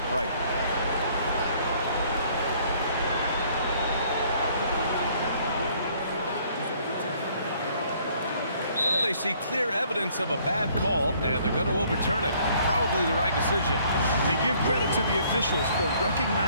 right. They see clear evidence of a bad call, and they're going to overturn it. Probably the right decision. They give credit to the officials for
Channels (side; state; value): both; inverted; correlation -0.61